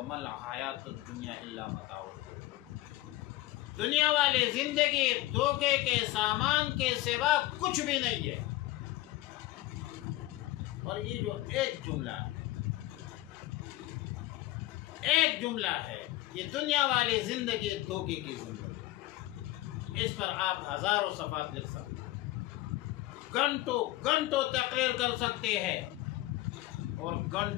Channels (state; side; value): quieter; right; 16.7 dB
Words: الْحَيَاةُ الدُّنْيَا إِلَّا مَتَاعُ الْغُرُورِ، دنیا والی زندگی دھوکے کے سامان کے سوا کچھ بھی نہیں ہے۔ اور یہ جو ایک جملہ ہے، ایک جملہ ہے، یہ دنیا والی زندگی دھوکے کی زندگی، اس پر آپ ہزاروں صفحات لکھ سکتے ہیں، گھنٹوں گھنٹوں تقریر کر سکتے ہیں، اور